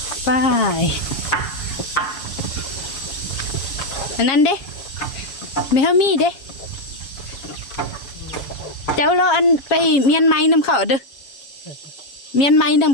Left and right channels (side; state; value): right; late; 7.3 ms